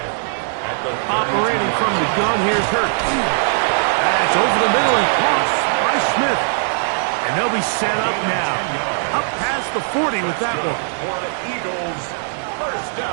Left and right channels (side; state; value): left; silent; digital silence